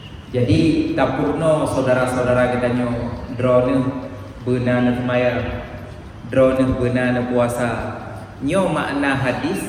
Jadi tapurno saudara-saudara kita nyo drone benar semaya, drone benar puasa. Nyo makna hadis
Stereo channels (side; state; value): both; identical; correlation 1.00